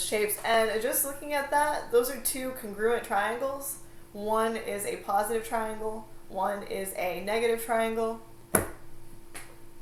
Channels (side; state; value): both; identical; correlation 1.00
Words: shapes. And just looking at that, those are two congruent triangles. One is a positive triangle, one is a negative triangle.